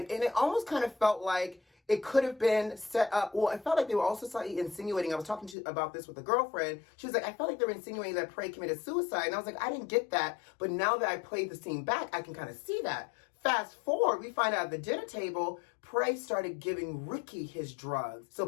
it almost kind of felt like it could have been set up. Well, I felt like they were also slightly insinuating. I was talking about this with a girlfriend. She was like, I felt like they were insinuating that Prey committed suicide. And I was like, I didn't get that. But now that I played the scene back, I can kind of see that. Fast forward, we find out at the dinner table, Prey started giving Ricky his drugs. So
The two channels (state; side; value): drops out; right; at 5.6 s